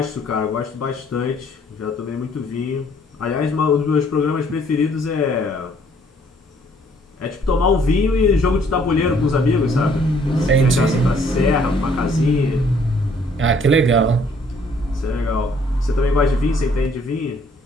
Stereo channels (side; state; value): both; normal; correlation 0.62